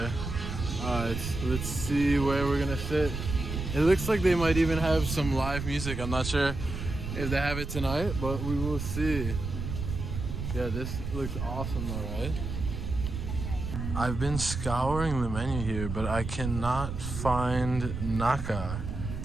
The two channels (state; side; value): noise; right; rumble, 5 dB below the sound